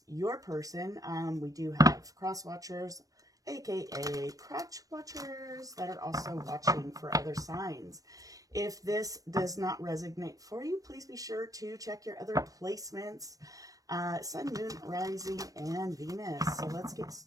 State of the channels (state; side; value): late; left; 0.17 ms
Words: your person. We do have cross watchers, aka crotch watchers, that are also watching for other signs. If this does not resonate for you, please be sure to check your other placements. Sun, Moon, Rising, and Venus. So let's get